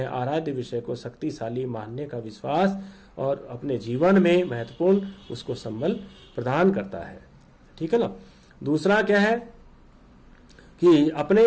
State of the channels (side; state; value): both; identical; correlation 1.00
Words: आराध्य विषय को शक्तिशाली मानने का विश्वास और अपने जीवन में महत्वपूर्ण उसको संबल प्रदान करता है। ठीक है ना। दूसरा क्या है कि